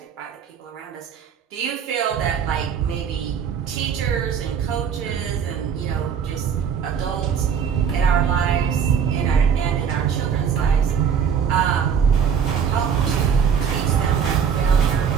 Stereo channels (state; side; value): quieter; left; 7.4 dB